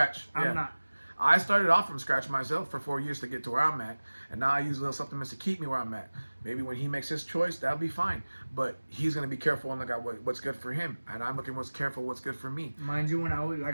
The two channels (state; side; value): inverted; both; correlation -1.00